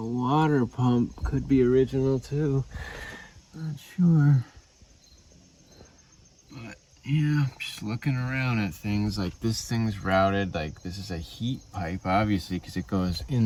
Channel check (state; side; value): identical; both; correlation 1.00